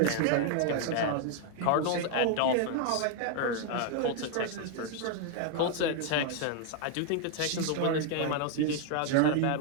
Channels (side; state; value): both; different; correlation 0.00